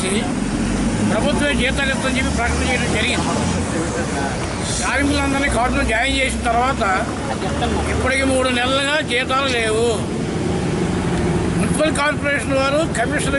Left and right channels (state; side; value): identical; both; correlation 1.00